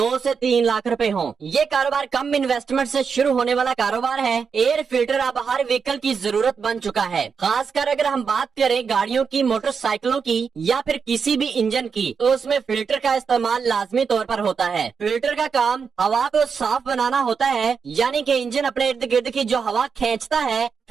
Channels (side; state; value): left; quieter; 5.9 dB